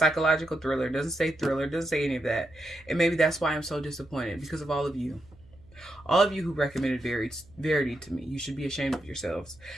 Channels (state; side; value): noise; right; hum, 26 dB below the sound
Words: thriller, it doesn't say thriller, it doesn't say any of that. And maybe that's why I'm so disappointed, because of all of you. All of you who recommended Verity to me. You should be ashamed of yourselves.